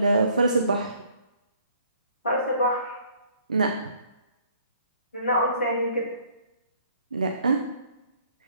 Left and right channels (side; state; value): both; inverted; correlation -0.60